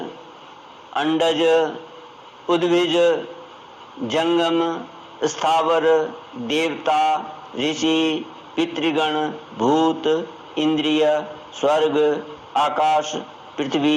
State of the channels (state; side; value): identical; both; correlation 1.00